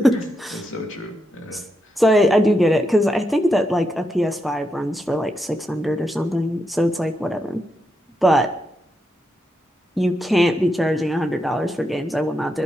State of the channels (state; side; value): normal; both; correlation 0.84